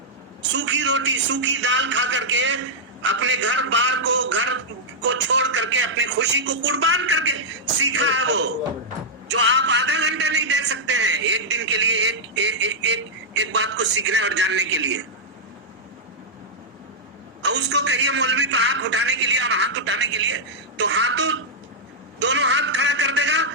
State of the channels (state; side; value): normal; both; correlation -0.07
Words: سوکھی روٹی سوکھی دال کھا کر کے اپنے گھر بار کو چھوڑ کر کے اپنی خوشی کو قربان کر کے سیکھا ہے وہ، جو آپ آدھا گھنٹہ نہیں دے سکتے ہیں ایک دن کے لیے ایک بات کو سیکھنے اور جاننے کے لیے. اور اس کو کہیے مولوی پہ آنکھ اٹھانے کے لیے اور ہاتھ اٹھانے کے لیے، تو ہاتھوں دونوں ہاتھ کھڑا کر دے گا،